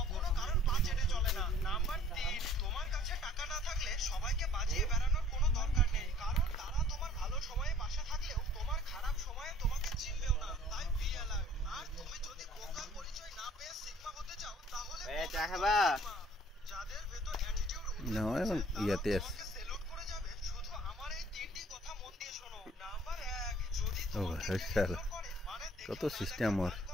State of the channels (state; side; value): normal; both; correlation 0.55